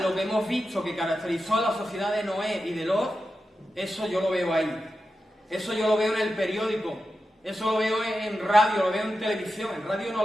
lo que hemos visto que caracterizó a la sociedad de Noé y de Lot, eso yo lo veo ahí. Eso yo lo veo en el periódico. Eso lo veo en radio, lo veo en televisión. En radio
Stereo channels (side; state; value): both; normal; correlation 0.91